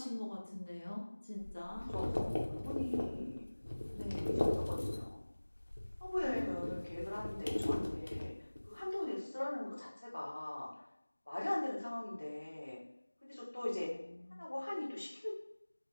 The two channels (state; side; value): inverted; both; correlation -1.00